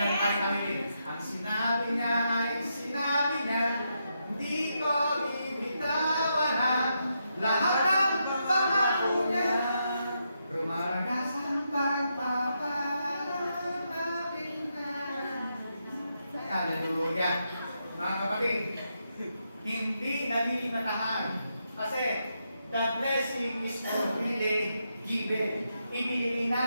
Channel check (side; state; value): both; inverted; correlation -0.82